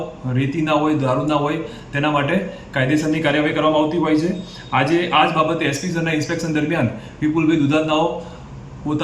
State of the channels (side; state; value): both; identical; correlation 1.00